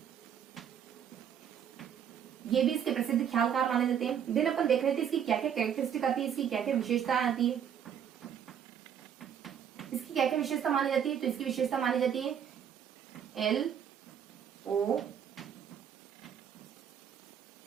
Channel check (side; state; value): left; quieter; 8.6 dB